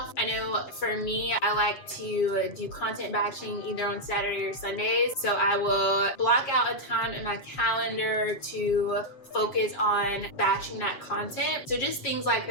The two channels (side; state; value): right; late; 7.7 ms